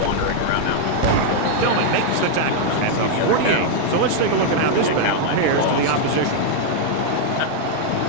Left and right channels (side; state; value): both; different; correlation 0.00